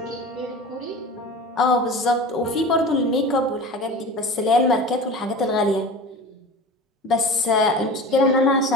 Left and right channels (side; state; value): both; normal; correlation 0.34